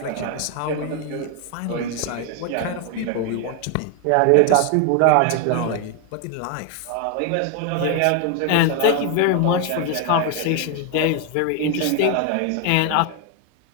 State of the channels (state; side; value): different; both; correlation 0.01